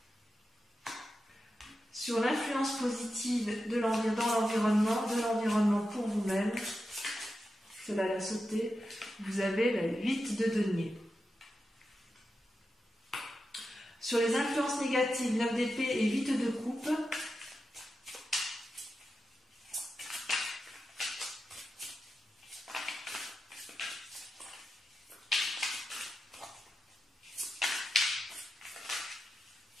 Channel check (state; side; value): normal; both; correlation 0.90